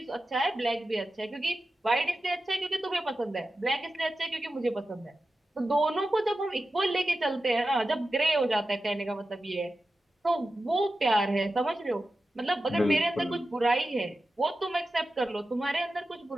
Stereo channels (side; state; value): both; normal; correlation 0.92